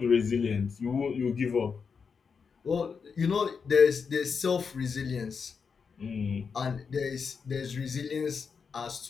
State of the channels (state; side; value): quieter; right; 5.8 dB